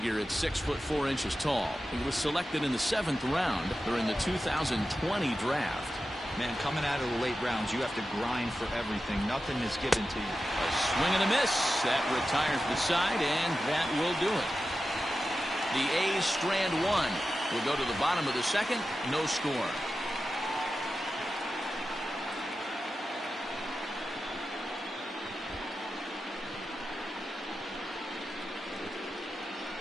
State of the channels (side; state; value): both; normal; correlation 0.92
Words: at 6'4" tall. He was selected in the 7th round during the 2020 draft. Man, coming out of the late rounds, you have to grind for everything. Nothing is given to you. A swing and a miss. That retires the side, and that will do it. The A's strand 1. We'll go to the bottom of the 2nd. No score.